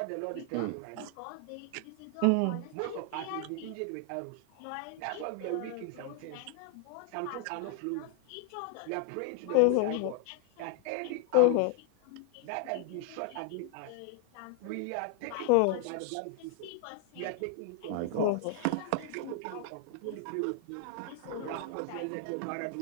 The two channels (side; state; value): both; different; correlation 0.00